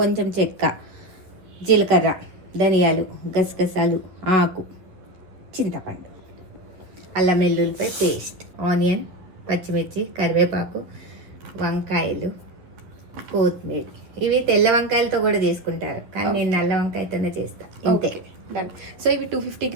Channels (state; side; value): late; left; 11 ms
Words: చెక్క, జీలకర్ర, ధనియాలు, గసగసాలు, ఆకు, చింతపండు, అల్లం వెల్లుల్లిపాయ పేస్ట్, ఆనియన్, పచ్చిమిర్చి, కరివేపాకు, వంకాయలు, కొత్తిమీర. ఇవి తెల్ల వంకాయలతో కూడా చేసుకుంటారు, కానీ నేను నల్ల వంకాయతోనే చేస్తాను. ఇంతే. సో ఇవి 250